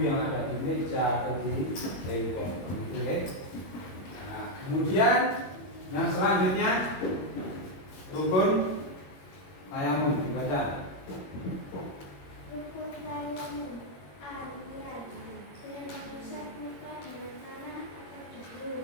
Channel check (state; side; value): late; right; 21 ms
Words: yang ada di meja atau di tembok, gitu, ya. Nah, kemudian yang selanjutnya rukun tayamum dibaca. Rukun tayamum. A. Niat. B. Mengusap muka dengan tanah atau